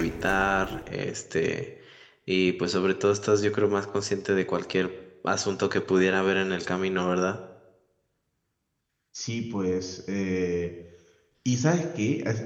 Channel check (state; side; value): identical; both; correlation 1.00